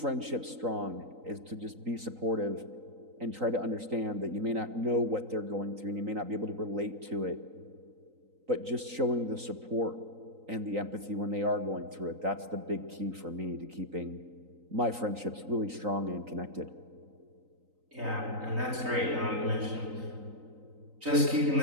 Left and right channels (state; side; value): late; left; 3.9 ms